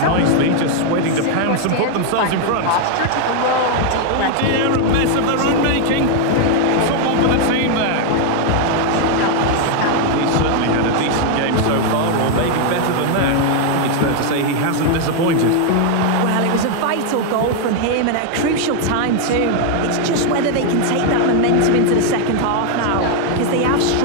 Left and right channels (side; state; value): both; different; correlation 0.00